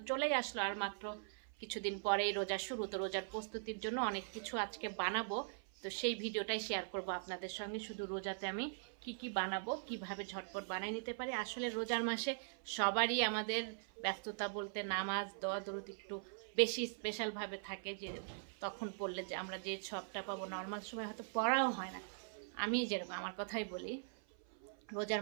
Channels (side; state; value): left; silent; 50 dB below the other